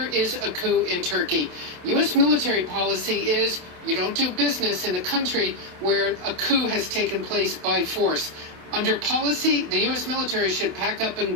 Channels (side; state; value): left; late; 28 ms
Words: is a coup in Turkey, U.S. military policy is you don't do business in a country where a coup has taken place by force. Under policy, the U.S. military should pack up